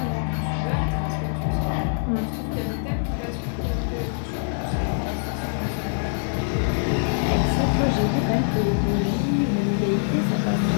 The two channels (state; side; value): silent; right; digital silence